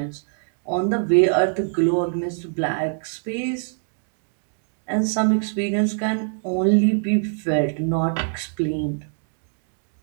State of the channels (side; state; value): left; silent; digital silence